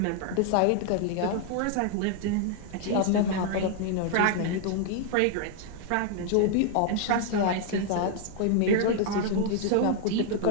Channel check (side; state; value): both; different; correlation 0.00